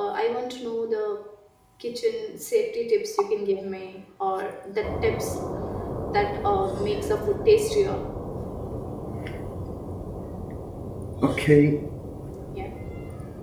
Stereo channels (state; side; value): identical; both; correlation 1.00